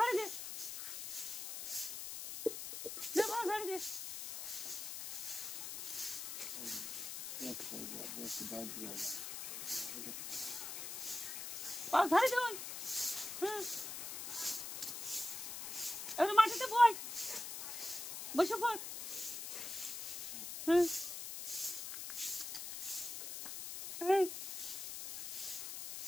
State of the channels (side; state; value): left; noise; hiss, 6 dB below the sound